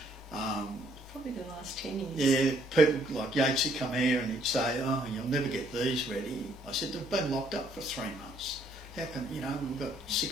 Probably the last 10 years. Yeah, people like Yatesy come here and he'd say, "Oh, you'll never get these ready." I said, "They've been locked up for 3 months. How can, you know, we've got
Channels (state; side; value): normal; both; correlation 0.66